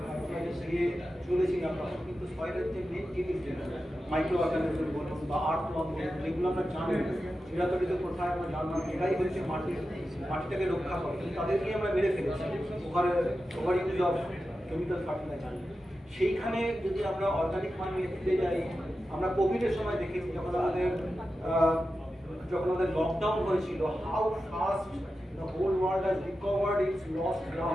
দিয়ে চলেছিলাম, তখন কিন্তু সয়েলের যে মেন জিনিস মাইক্রো অর্গানিজম বলুন বা আর্থওয়ার্ম বলুন, যেগুলো আমরা জানি চিরাতরিত কোথায় আমরা জানলাম এটাই হচ্ছে মাটিটাকে রক্ষা করে, তাদেরকে আমরা মেরে ফেলেছি over use of chemical fertiliser. সেইখানে যদি আমরা অর্গানিক ফার্মিংয়ে ফিরে যাই, আমরা কোভিডের সময় দেখেছি যখন আমাদের লকডাউন হয়েছিল, how fast the whole world has recovered its lost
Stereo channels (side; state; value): both; normal; correlation 0.91